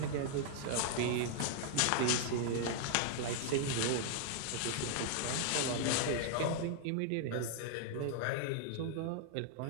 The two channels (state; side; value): different; both; correlation -0.01